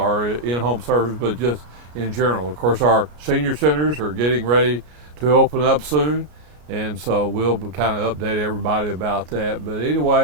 in-home service, but just in general. Of course, our senior centers are getting ready to open up soon, and so we'll kind of update everybody about that. But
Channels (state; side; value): late; left; 33 ms